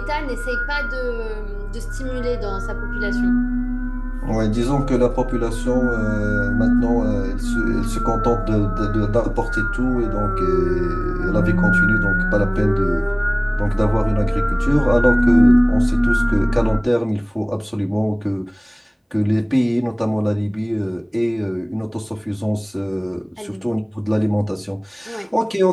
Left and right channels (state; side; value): identical; both; correlation 1.00